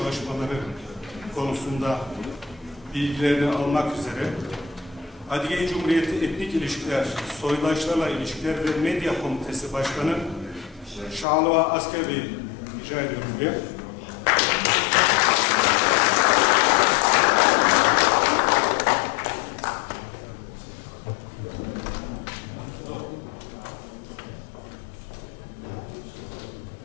konusunda bilgilerini almak üzere Adige Cumhuriyeti Etnik İlişkiler, Soydaşlarla İlişkiler ve Medya Komitesi Başkanı Şahalva Asker Bey'i rica ediyorum buraya.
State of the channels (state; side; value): drops out; right; at 11.2 s